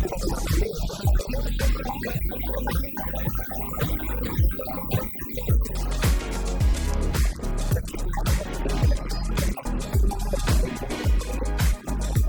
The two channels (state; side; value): identical; both; correlation 1.00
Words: suitable buat landing, jadi kita landing manual aja. Seret. Oke, Cukup sekian untuk video kita kali ini untuk menerbangkan si mungil DJI Mini 4 Pro ini. Kalau misalkan